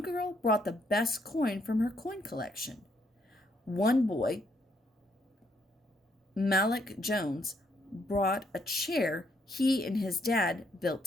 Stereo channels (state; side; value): normal; both; correlation 0.73